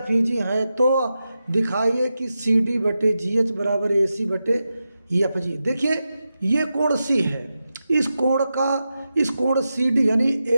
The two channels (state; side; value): inverted; both; correlation -0.90